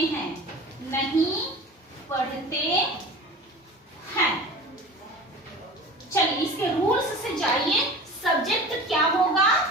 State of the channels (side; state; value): both; normal; correlation 0.37